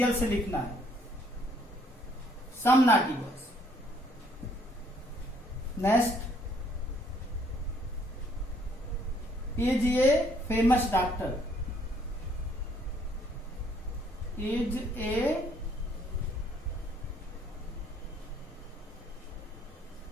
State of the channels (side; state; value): both; normal; correlation 0.65